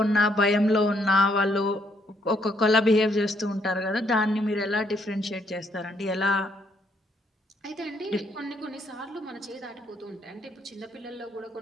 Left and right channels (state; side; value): normal; both; correlation 0.71